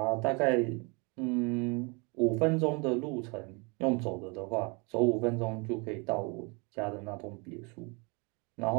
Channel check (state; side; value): quieter; left; 30.8 dB